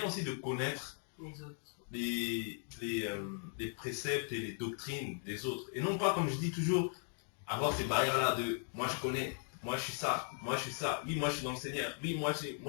aussi de connaître les préceptes et les doctrines des autres. Et non pas, comme je dis toujours, avoir ces barrières-là de moi je connais, moi je suis ça, moi je suis ça, oui moi je suis dans le Seigneur, oui moi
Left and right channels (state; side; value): silent; right; 52 dB below the other